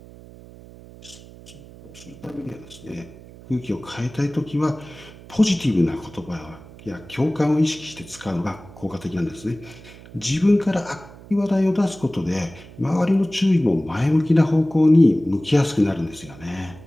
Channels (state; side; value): noise; right; hum, 19 dB below the sound